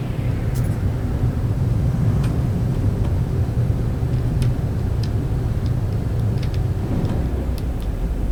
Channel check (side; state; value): both; identical; correlation 1.00